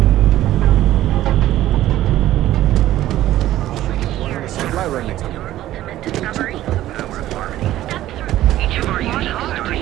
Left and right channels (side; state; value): left; quieter; 14.0 dB